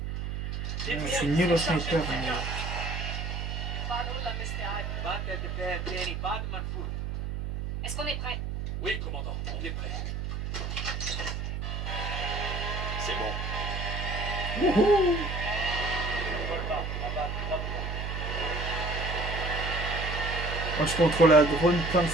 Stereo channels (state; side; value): noise; right; hum, 3 dB below the sound